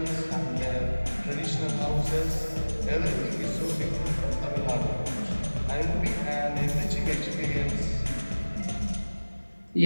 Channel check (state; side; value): inverted; both; correlation -1.00